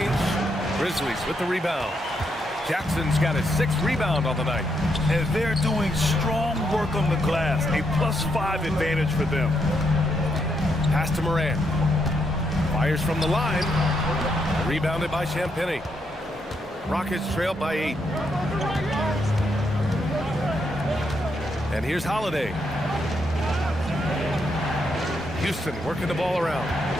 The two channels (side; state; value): both; normal; correlation 0.78